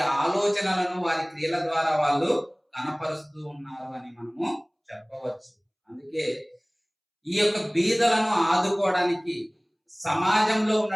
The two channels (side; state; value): both; identical; correlation 1.00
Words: ఆలోచనలను వారి క్రియల ద్వారా వాళ్ళు కనపరుస్తూ ఉన్నారు అని మనము చెప్పవచ్చు. అందుకే ఈ యొక్క బీదలను ఆదుకోవడానికి సమాజంలో